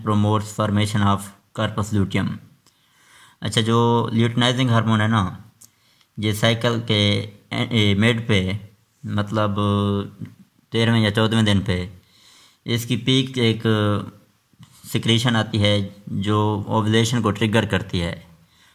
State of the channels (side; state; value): both; identical; correlation 1.00